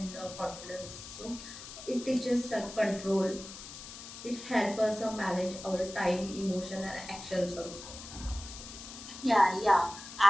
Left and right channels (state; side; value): noise; left; hiss, 13 dB below the sound